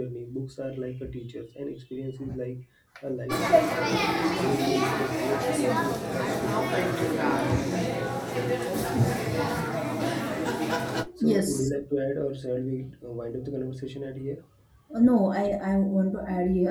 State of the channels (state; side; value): identical; both; correlation 1.00